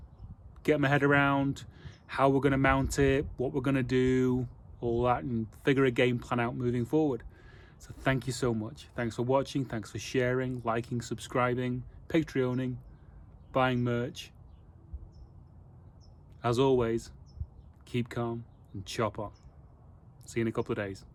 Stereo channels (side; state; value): both; identical; correlation 1.00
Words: get my head around how we're going to mount it, what we're going to do, all that, and figure a game plan out moving forward. So thank you so much. Thanks for watching. Thanks for sharing, liking, subscribing, Patreoning, buying merch. As always, keep calm and chop on. See you in a couple of days.